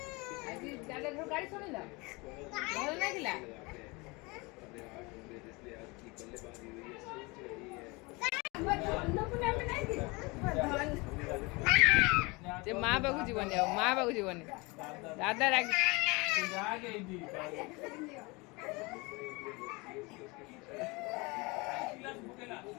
आज दादा घर गाड़ी सुनिला भल लागिला जे माँ बाबू जीवन माँ बाबू जीवन दादा राग जागे दी गिलास पकेला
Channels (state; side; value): quieter; right; 26.1 dB